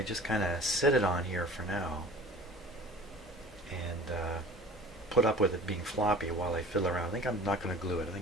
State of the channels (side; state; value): both; normal; correlation 0.44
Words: just kind of sit it on here for now and put up with it being floppy while I fiddle around? I think I'm not going to glue it. I